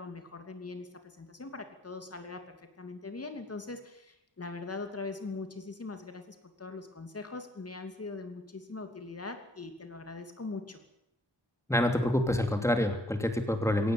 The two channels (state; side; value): normal; both; correlation 0.69